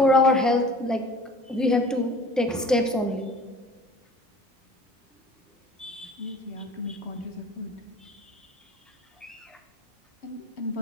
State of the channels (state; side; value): normal; both; correlation 0.46